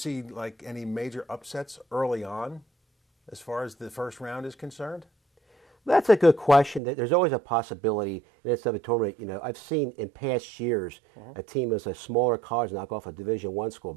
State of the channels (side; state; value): left; drops out; at 6.8 s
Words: like any major upsets early on as far as the first round is concerned? That's a good question. There's always a possibility in this type of tournament. I've seen in past years a team as a smaller college knock off a Division I school.